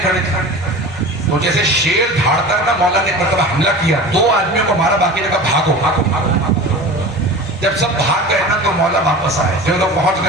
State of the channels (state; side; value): normal; both; correlation 0.35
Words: کھڑے تھے تو جیسے شیر دھاڑتا نا مولا نے ایک مرتبہ حملہ کیا، 2 آدمیوں کو مارا، باقی نے کہا بھاگو بھاگو بھاگو. جب سب بھاگ گئے نا تو مولا واپس آئے. جو لوگ پہنچ